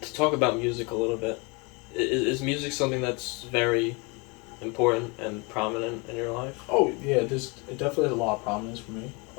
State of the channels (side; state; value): right; quieter; 29.6 dB